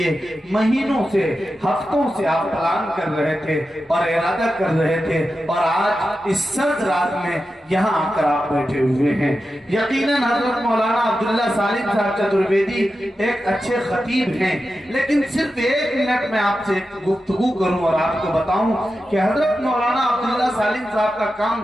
महीनों से हफ्तों से आप प्लान कर रहे थे और इरादा कर रहे थे, और आज इस सर्द रात में यहाँ आकर आप बैठे हुए हैं। यकीनन हजरत मौलाना अब्दुल्ला सालिम साहब चतुर्वेदी एक अच्छे खतीब हैं, लेकिन सिर्फ 1 मिनट में आपसे गुफ्तगू करूं और आपको बताऊं कि हजरत मौलाना अब्दुल्ला सालिम साहब का काम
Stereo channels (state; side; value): normal; both; correlation 0.91